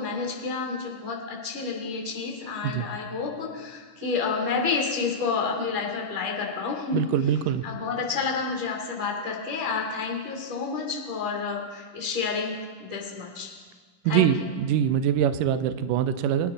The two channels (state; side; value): late; left; 11 ms